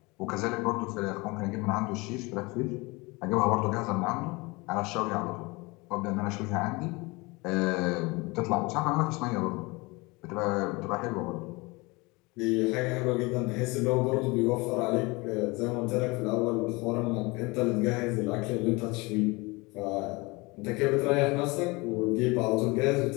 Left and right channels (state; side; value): quieter; right; 25.1 dB